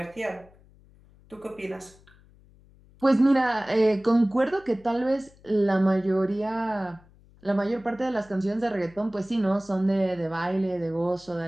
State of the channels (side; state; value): left; noise; hum, 27 dB below the sound